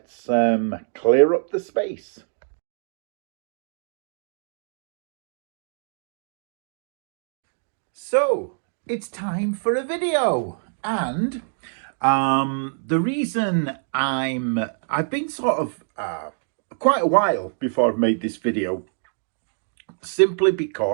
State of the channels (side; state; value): left; silent; digital silence